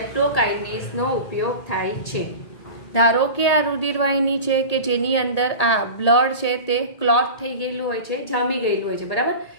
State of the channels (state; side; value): late; right; 1.8 ms